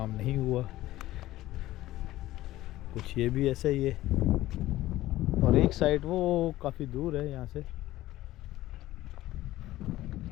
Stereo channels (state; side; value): quieter; right; 15.8 dB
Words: नहीं हुआ। कुछ ये भी ऐसा ही है, और एक साइड वो काफ़ी दूर है यहाँ से।